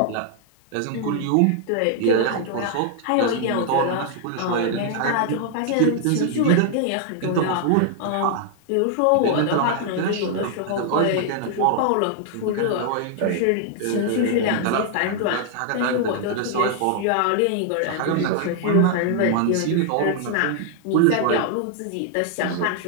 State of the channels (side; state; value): both; different; correlation 0.00